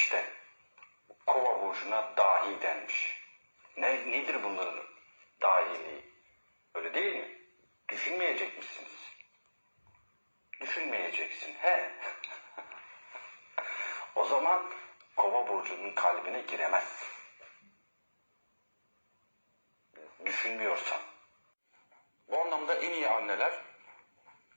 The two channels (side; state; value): both; inverted; correlation -1.00